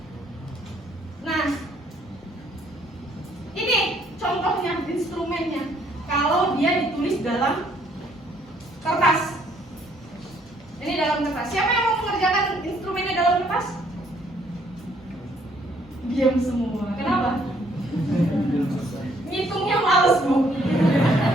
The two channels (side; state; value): both; normal; correlation 0.66